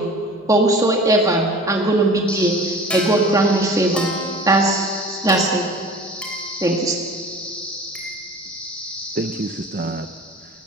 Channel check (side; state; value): both; normal; correlation 0.42